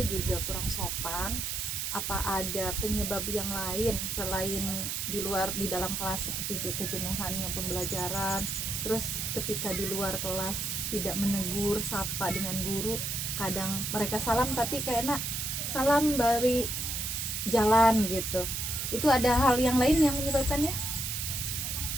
juga kurang sopan. Apa ada penyebab yang lain selain di dalam kelas seperti kejenuhannya pembelajaran, terus ketika di luar kelas tidak menegur sapa dengan guru, kadang mereka salam tapi kayaknya salam dari jalan gitu. Itu ada hal yang lain yang menyebabkannya?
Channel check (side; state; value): right; noise; hiss, 2 dB below the sound